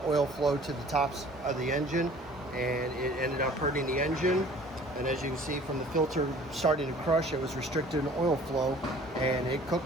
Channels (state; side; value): normal; both; correlation 0.50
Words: oil flow to the tops of the engine, and it ended up hurting the engine. And as you can see from the filter starting to crush, it was restricted in oil flow and it